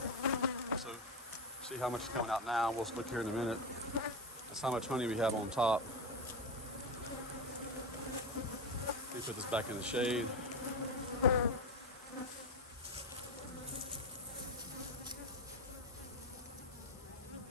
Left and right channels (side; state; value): both; normal; correlation 0.16